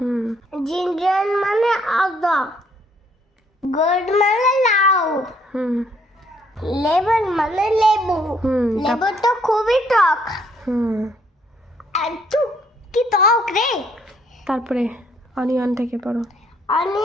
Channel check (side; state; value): both; normal; correlation 0.67